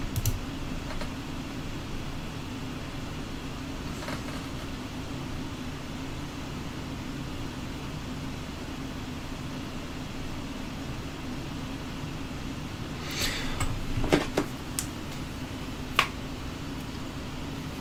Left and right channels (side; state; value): both; identical; correlation 1.00